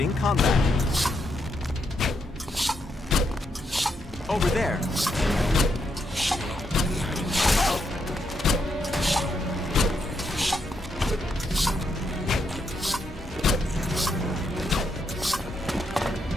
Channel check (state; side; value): normal; both; correlation 0.79